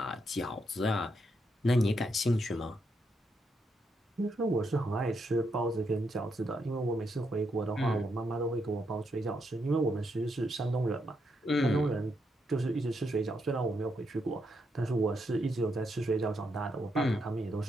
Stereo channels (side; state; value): both; normal; correlation 0.79